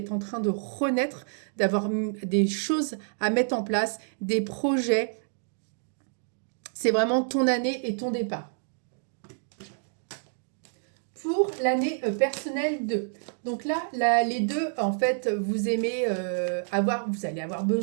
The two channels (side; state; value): left; silent; digital silence